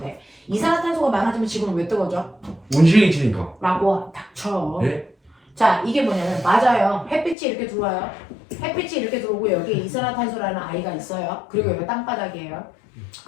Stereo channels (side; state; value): right; drops out; at 7.4 s